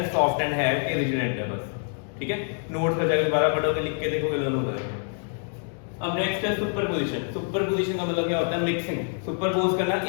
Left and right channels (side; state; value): right; silent; 57 dB below the other